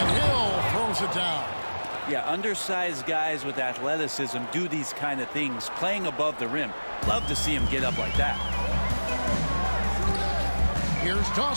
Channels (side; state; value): both; inverted; correlation -1.00